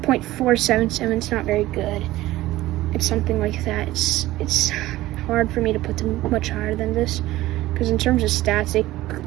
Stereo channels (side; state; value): left; quieter; 16.6 dB